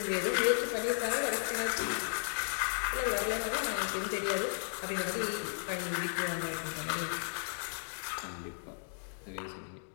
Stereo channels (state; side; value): silent; right; digital silence